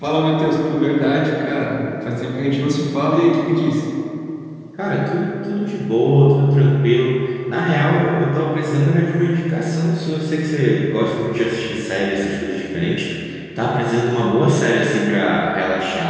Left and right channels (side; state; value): both; identical; correlation 1.00